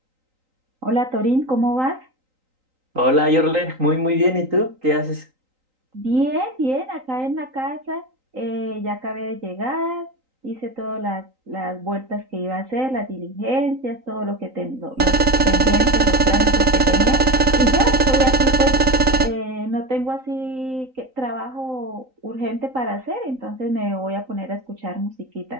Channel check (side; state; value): left; late; 3.9 ms